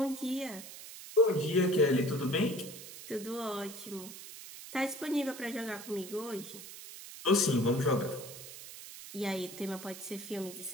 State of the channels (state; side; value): noise; right; hiss, 13 dB below the sound